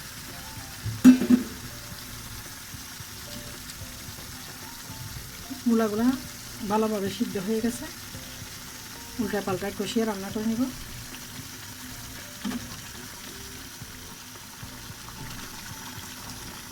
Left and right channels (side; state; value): both; identical; correlation 1.00